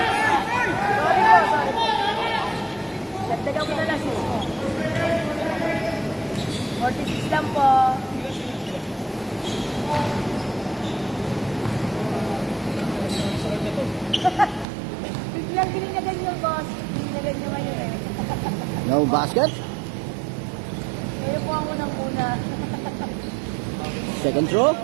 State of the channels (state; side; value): drops out; left; at 14.7 s